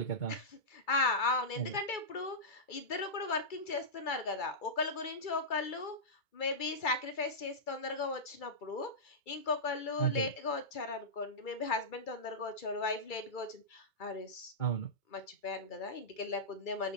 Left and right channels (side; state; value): right; late; 2.3 ms